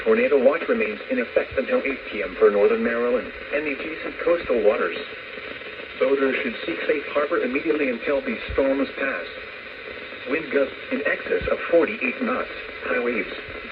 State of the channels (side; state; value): both; identical; correlation 1.00